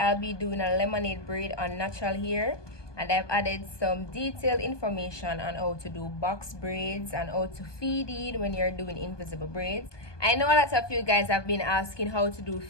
be doing a lemonade braid on natural hair, and I've added some detailed information on how to do box braids and how to feed it when you're doing invisible braids. I know a lot of you guys have been asking how to do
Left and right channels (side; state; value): right; late; 1.2 ms